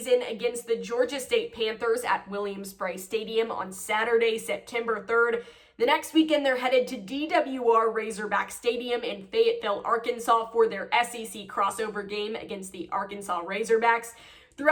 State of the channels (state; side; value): identical; both; correlation 1.00